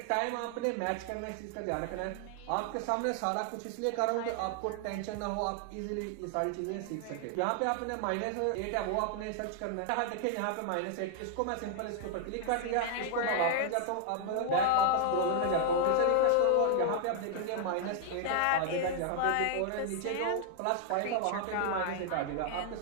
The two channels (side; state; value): both; different; correlation 0.00